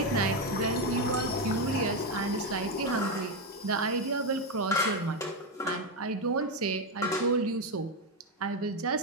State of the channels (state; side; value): normal; both; correlation 0.08